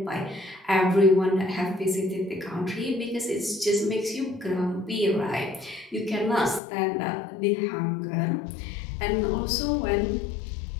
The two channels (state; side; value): drops out; right; at 6.6 s